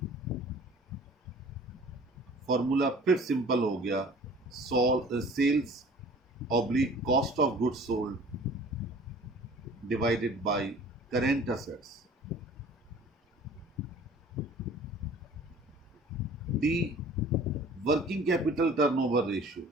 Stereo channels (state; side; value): normal; both; correlation 0.47